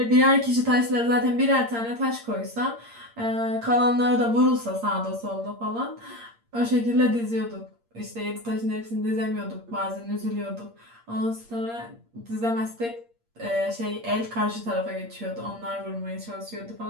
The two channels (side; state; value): left; late; 8.7 ms